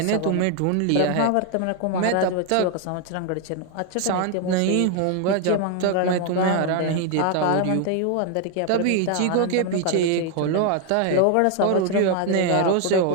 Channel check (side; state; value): both; different; correlation 0.01